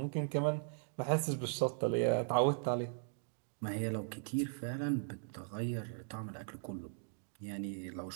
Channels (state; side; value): silent; left; digital silence